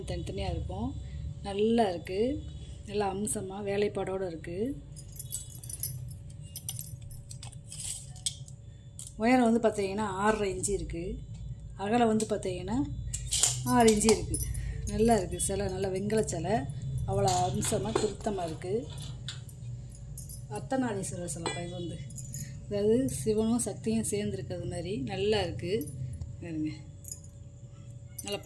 தனித்தனியாக இருக்கும். நல்லா இருக்குது, நல்லா அம்சமாக வேலைப்பாடோடு இருக்குது. உயரம் வந்து பார்த்தீங்கன்னா 6.5 இன்ச்சு இருக்குது. அகலம் வந்து பார்த்தீங்கன்னா 6 இன்ச்சு இருக்குது. நல்லா இருக்குது சிலை, நல்லா வெங்கல சிலை, அவ்வளோ அம்சமாக திருத்தமாக இருக்குது. அர்த்தநாரீஸ்வரர் சிலைப்பா. இது வந்து அதாவது சிவனும் சக்தியும் சேர்ந்துருக்கிறது மாதிரி நல்லா இருக்குது. பாருங்க, நல்லா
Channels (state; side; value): identical; both; correlation 1.00